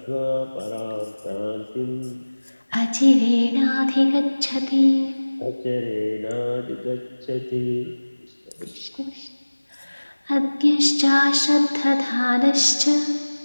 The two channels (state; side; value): inverted; both; correlation -1.00